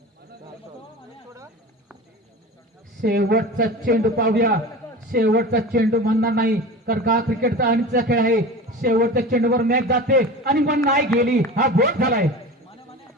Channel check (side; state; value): both; normal; correlation 0.33